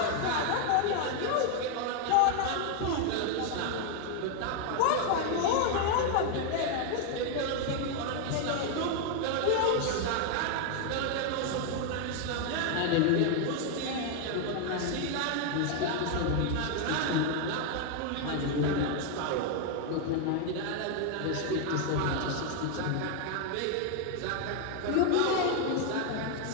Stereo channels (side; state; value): both; different; correlation 0.01